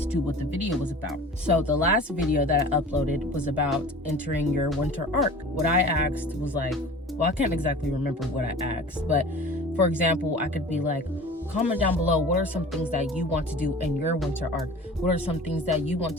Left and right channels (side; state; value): both; normal; correlation 0.41